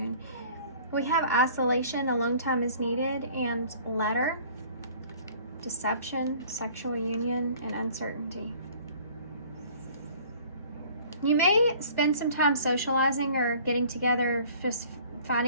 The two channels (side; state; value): both; inverted; correlation -0.51